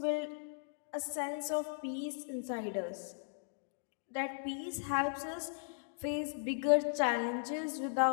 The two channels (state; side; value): silent; right; digital silence